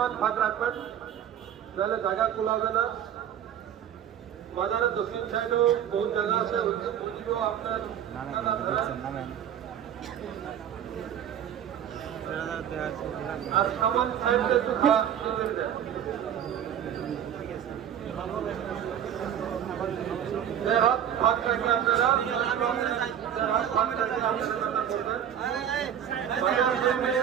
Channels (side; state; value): left; quieter; 9.6 dB